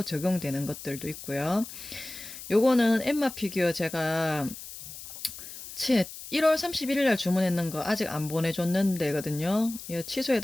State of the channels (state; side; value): noise; left; hiss, 13 dB below the sound